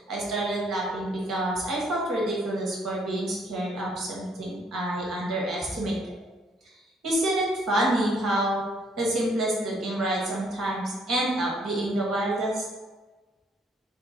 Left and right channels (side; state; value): both; normal; correlation 0.66